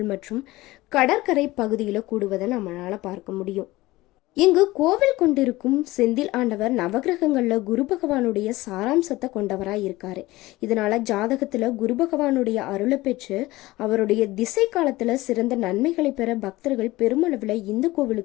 மற்றும் கடற்கரை பகுதியில கூடுவதை நம்மளால பார்க்க முடியும். இங்கு கோவில் கொண்டிருக்கும் செந்தில் ஆண்டவர் நவகிரகங்கள்ல குரு பகவானுடைய சாராம்சத்தை கொண்டவராய் இருக்காரு. இதனால ஜாதகத்துல குரு பகவானுடைய அருளை பெற்று அவருடைய திசை காலத்துல சிறந்த நன்மைகளை பெற பக்தர்கள் பெருமளவுல இந்த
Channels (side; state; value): right; quieter; 19.0 dB